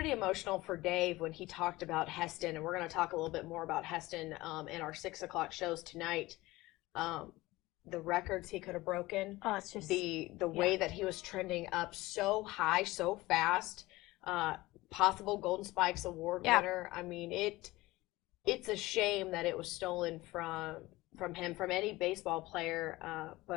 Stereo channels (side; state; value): right; quieter; 19.4 dB